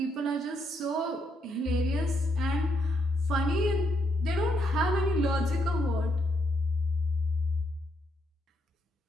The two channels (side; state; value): both; normal; correlation 0.77